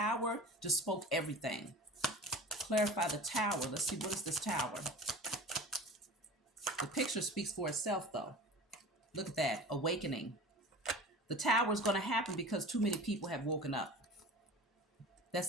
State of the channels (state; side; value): normal; both; correlation 0.38